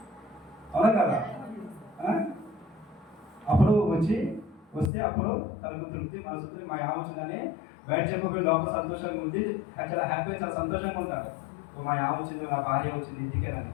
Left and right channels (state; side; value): drops out; right; at 4.9 s